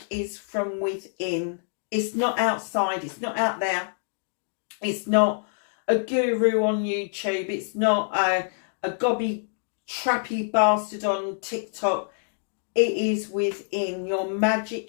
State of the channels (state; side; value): silent; right; digital silence